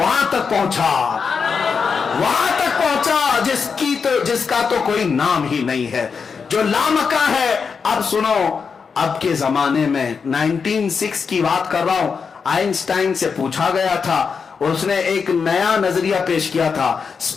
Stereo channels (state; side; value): quieter; right; 5.7 dB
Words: तक पहुंचा, वहां तक पहुंचा जिसका तो कोई नाम ही नहीं है, जो लामका है। अब सुनो, अब के जमाने में 1906 की बात कर रहा हूं, आइंस्टाइन से पूछा गया था, उसने एक नया नजरिया पेश किया था,